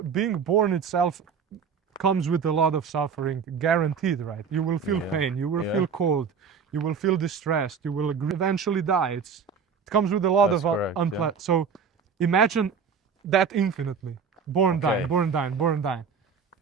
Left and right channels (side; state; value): left; quieter; 6.2 dB